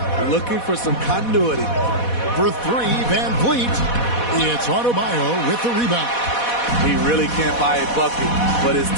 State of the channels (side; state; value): right; late; 4.1 ms